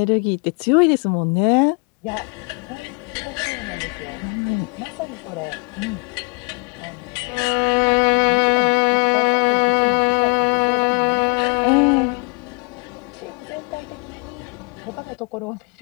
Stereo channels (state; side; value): quieter; right; 34.4 dB